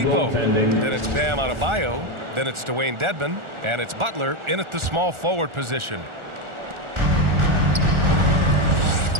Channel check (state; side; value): late; left; 1.4 ms